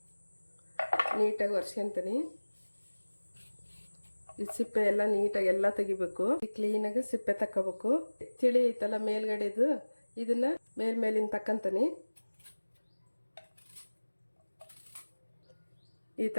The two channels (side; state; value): both; inverted; correlation -1.00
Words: ನೀಟಾಗಿ ಒರೆಸ್ಕೊತೀನಿ. ಈ ಸಿಪ್ಪೆ ಎಲ್ಲ ನೀಟಾಗಿ ಎಲ್ಲ ತೆಗಿಬೇಕು. ಕ್ಲೀನಾಗಿ ಸಿಪ್ಪೆ ತಕ್ಕೋಬೇಕು. ತಿಳಿ ಐತಲ್ಲ ಮೇಲ್ಗಡೆದು, ಇದನ್ನ ಮೇಲಿನ ತಕ್ಕಂತೀನಿ. ಈ